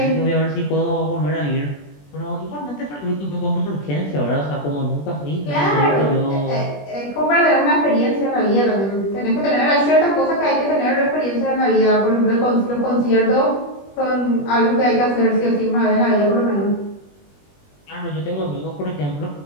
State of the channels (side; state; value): right; late; 21 ms